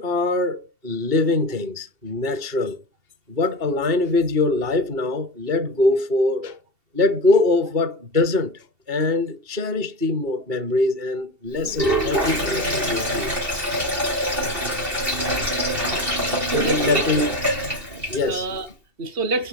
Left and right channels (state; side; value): late; left; 2.7 ms